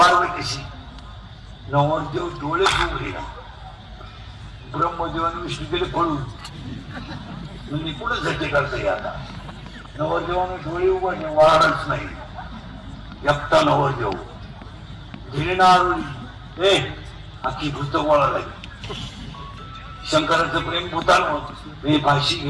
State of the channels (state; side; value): identical; both; correlation 1.00